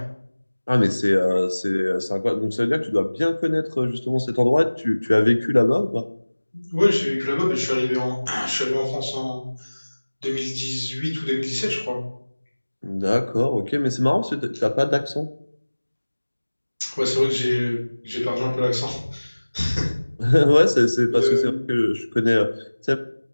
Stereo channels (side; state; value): both; inverted; correlation -1.00